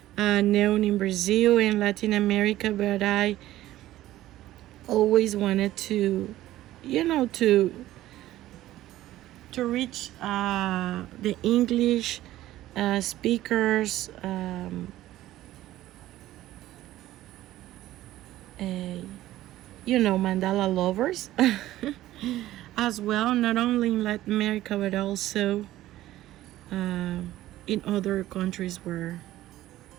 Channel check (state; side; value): quieter; left; 14.9 dB